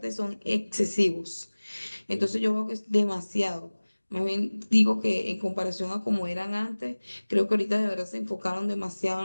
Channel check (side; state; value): both; inverted; correlation -1.00